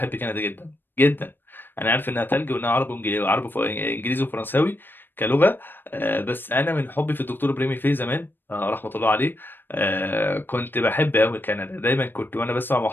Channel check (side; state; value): right; late; 0.096 ms